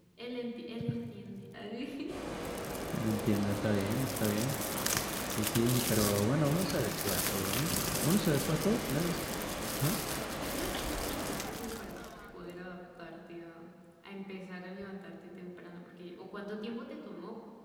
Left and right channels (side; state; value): both; identical; correlation 1.00